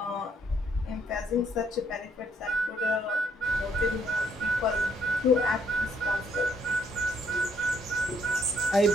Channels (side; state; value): both; normal; correlation 0.69